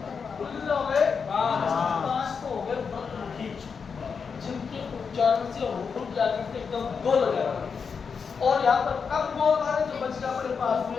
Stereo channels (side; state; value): right; quieter; 5.8 dB